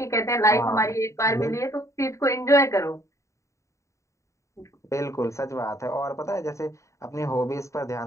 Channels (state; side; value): late; right; 0.15 ms